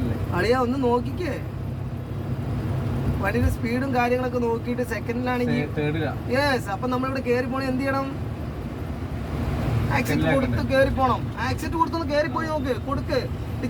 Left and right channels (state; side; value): identical; both; correlation 1.00